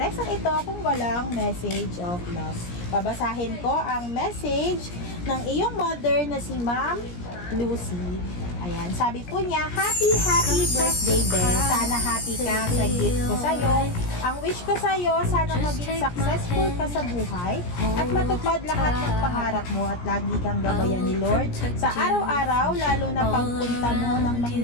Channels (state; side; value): late; right; 17 ms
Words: ito kung walang message of love. Babasahin ko ang message ng iyong mother na si Ma'am Lucy. Ayan, sabi po niya, happy birthday, Belle. Sana happy ka sa gift ko sa'yo. Ang wish ko sa'yo, sana maging successful ka sa buhay at matupad lahat ng pangarap mo at lagi kang gabayan ni Lord sa araw-araw, lalo na pagpunta mo ng